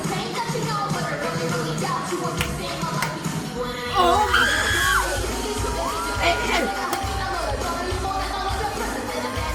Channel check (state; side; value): identical; both; correlation 1.00